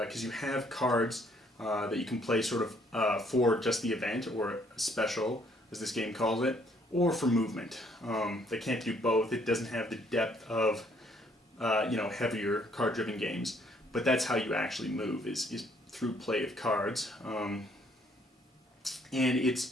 you have cards that you can play sort of for just the event, or special, as this game calls it, or for movement. They can't do both. It doesn't have the depth of heavier card-driven games, but that's how you actually move, is through play of cards. And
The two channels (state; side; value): normal; both; correlation 0.66